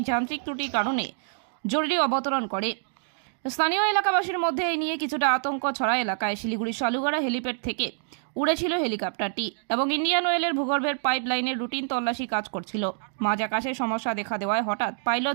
যান্ত্রিক ত্রুটির কারণে জরুরি অবতরণ করে। স্থানীয় এলাকাবাসীর মধ্যে এই নিয়ে কিছুটা আতঙ্ক ছড়া এলাকায়। শিলিগুড়ি শালুগড়া হেলিপ্যাড থেকে উড়েছিল হেলিকপ্টারটি এবং ইন্ডিয়ান অয়েলের ভূগর্ভের পাইপ লাইনের রুটিন তল্লাশি কাজ করছিল। মাঝ আকাশে সমস্যা দেখা দেওয়ায় হঠাৎ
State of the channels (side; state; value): left; silent; digital silence